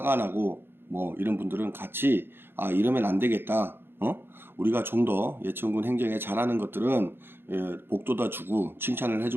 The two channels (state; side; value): late; left; 0.10 ms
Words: 나고 뭐 이런 분들은 같이 이러면 안 되겠다, 우리가 좀 더 예천군 행정에 잘하는 것들은 복돋아 주고 칭찬을